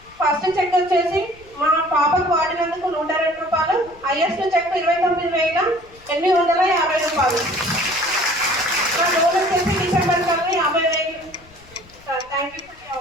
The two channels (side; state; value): left; noise; rumble, 26 dB below the sound